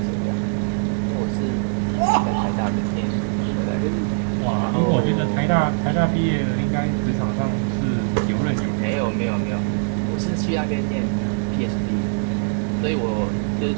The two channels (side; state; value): left; silent; digital silence